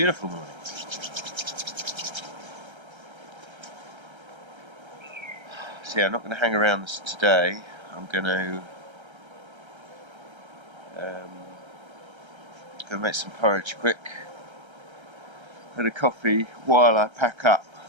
morning. So yeah, I'm not going to hang around this today. I'm going to go make some porridge quick and a coffee while I pack up.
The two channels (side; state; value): left; late; 1.3 ms